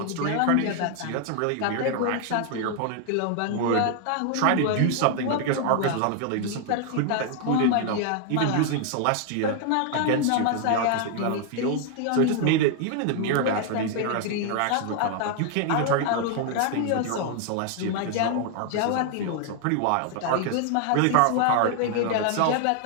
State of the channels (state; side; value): different; both; correlation 0.00